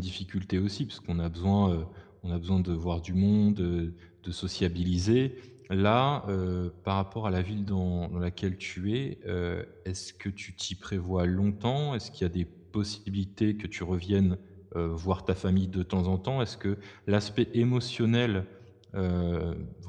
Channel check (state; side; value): identical; both; correlation 1.00